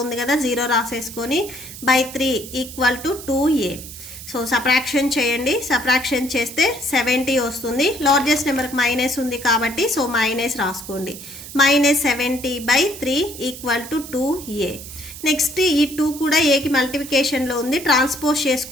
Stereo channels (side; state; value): right; noise; hiss, 13 dB below the sound